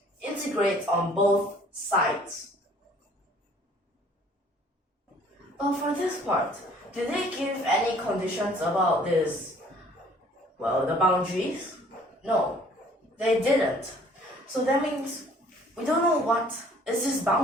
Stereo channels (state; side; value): normal; both; correlation 0.56